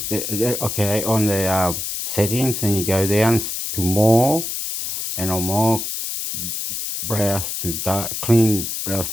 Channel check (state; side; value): noise; left; hiss, 4 dB below the sound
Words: Okay, on the settings, and you go down to more, and on more, browse to clean, browse